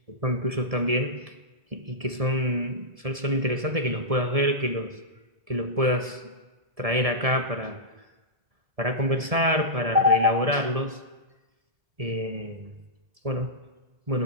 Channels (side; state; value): left; late; 1.7 ms